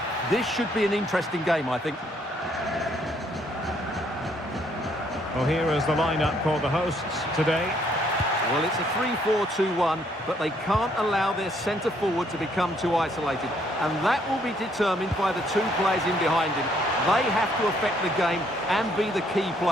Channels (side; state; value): both; normal; correlation 0.68